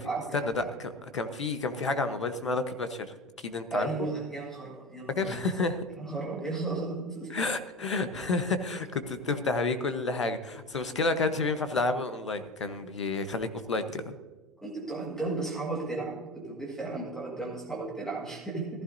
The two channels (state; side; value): normal; both; correlation 0.32